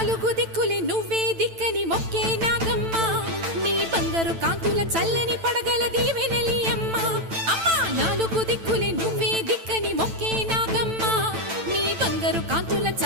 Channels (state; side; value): late; left; 9.0 ms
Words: నాలుగు దిక్కులే నువ్వే దిక్కని మొక్కే నాగమ్మ నీ బంగారు కాంతుల చల్లని పడగల దీవెనలి అమ్మ అమ్మా నాలుగు దిక్కులే నువ్వే దిక్కని మొక్కే నాగమ్మ నీ బంగారు కాంతుల